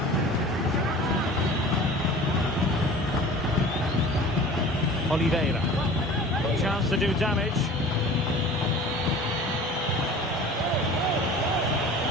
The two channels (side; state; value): both; normal; correlation 0.42